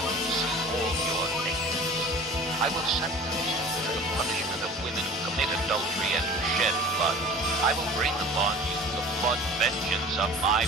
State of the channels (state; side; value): normal; both; correlation 0.43